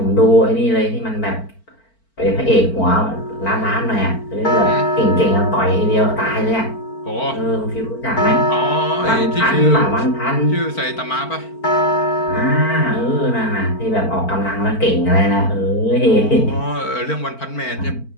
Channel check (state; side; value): late; right; 4.5 ms